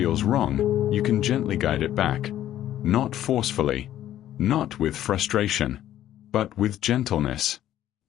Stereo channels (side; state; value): right; quieter; 12.3 dB